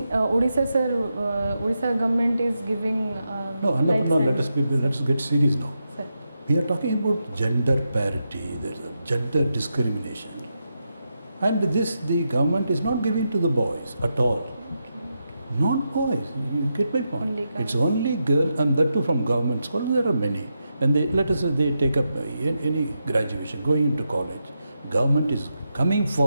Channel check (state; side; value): inverted; both; correlation -0.86